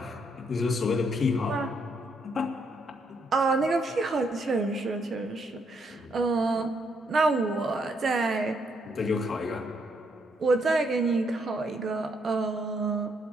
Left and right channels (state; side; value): normal; both; correlation 0.74